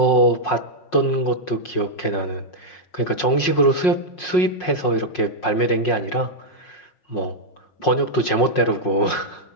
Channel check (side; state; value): right; late; 5.5 ms